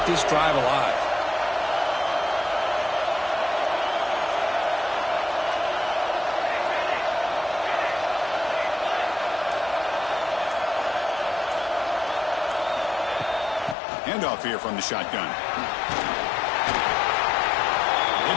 this drive alive. Handoff here from the shotgun. They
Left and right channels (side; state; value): right; drops out; at 13.8 s